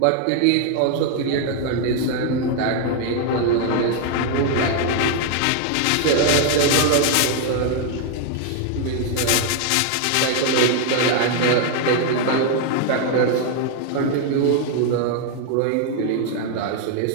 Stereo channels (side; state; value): both; different; correlation 0.00